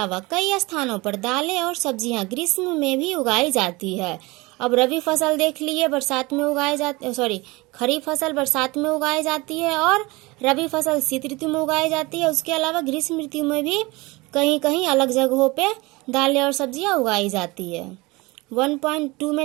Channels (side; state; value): left; quieter; 23.3 dB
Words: कई स्थानों पर दालें और सब्जियां ग्रीष्म में भी उगाई जाती है। अब रबी फसल देख लिए, बरसात में उगाई जाती, खरीफ फसल बरसात में उगाई जाती है और रबी फसल शीत ऋतु में उगाई जाती है। उसके अलावा ग्रीष्म ऋतु में भी कहीं कहीं अलग जगहों पे दालें और सब्जियां उगाई जाती है। 1.2